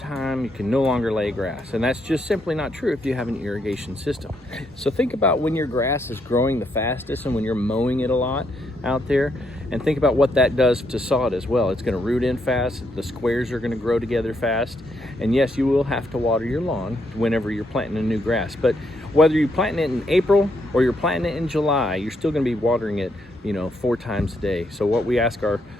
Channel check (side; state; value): both; normal; correlation 0.76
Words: you can no longer lay grass. And that's just simply not true if you have an irrigation system. So think about when your grass is growing the fastest and when you're mowing it a lot out there, and think about what that does to sod as well. It's gonna root in fast, the squares are gonna grow together fast. And yes, you will have to water your lawn whenever you're planting a new grass. But whether you're planting it in April or you're planting it in July, you're still gonna be watering it 4 times a day. So what we ask